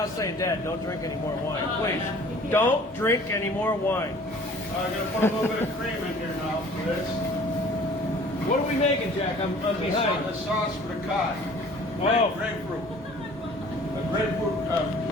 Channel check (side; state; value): both; normal; correlation 0.50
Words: saying, "Dad, don't drink any more wine, please. Don't drink any more wine." I'm gonna put a little bit of cream in here now for this. What are we making, Jack? I'm behind. The sauce for the cod. Oh. Grapefruit. The